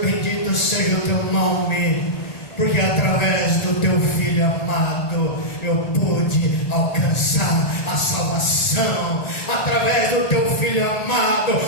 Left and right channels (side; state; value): right; late; 1.8 ms